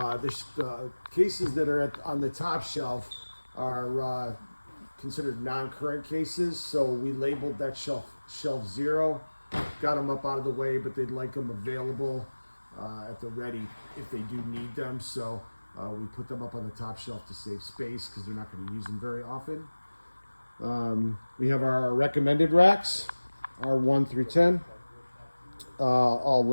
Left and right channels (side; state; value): both; inverted; correlation -1.00